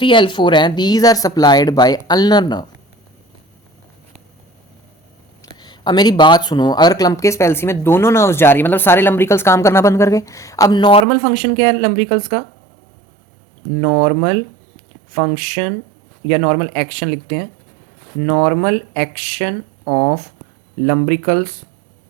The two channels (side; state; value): left; drops out; at 11.1 s